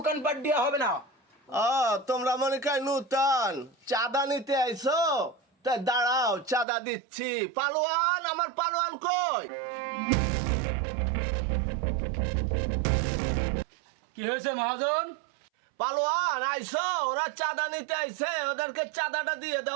দেওয়া হবে না। তোমরা মনে কয় নূতন চাঁদা নিতে আইছো? তাই দাঁড়াও, চাঁদা দিচ্ছি। পালোয়ান, আমার পালোয়ান কই? কি হয়েছে মহাজন? পালোয়ান আইছো? ওরা চাঁদা নিতে আইছে, ওদেরকে চাঁদাটা দিয়ে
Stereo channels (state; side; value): drops out; left; at 6.7 s